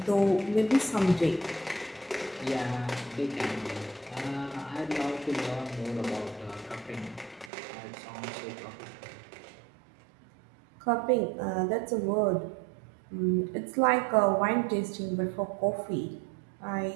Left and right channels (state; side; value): drops out; left; at 7.5 s